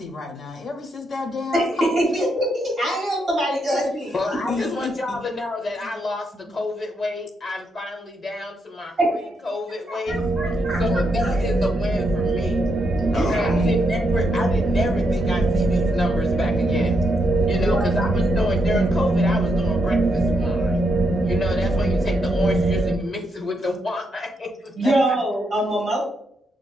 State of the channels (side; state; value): both; normal; correlation 0.80